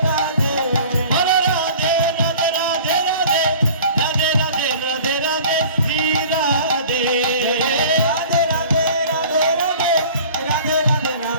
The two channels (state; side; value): inverted; both; correlation -0.45